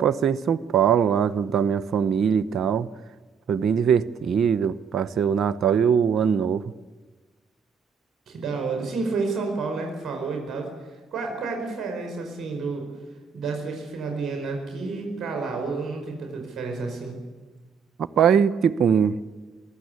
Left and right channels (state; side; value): quieter; left; 6.7 dB